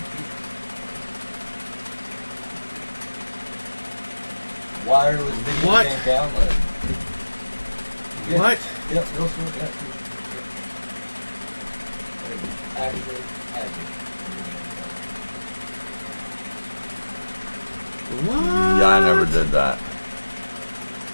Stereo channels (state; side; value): inverted; both; correlation -1.00